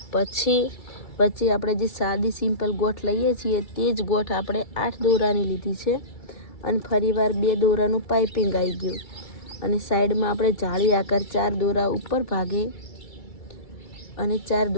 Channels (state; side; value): late; right; 2.3 ms